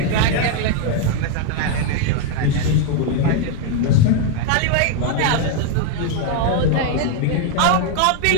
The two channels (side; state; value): both; different; correlation 0.01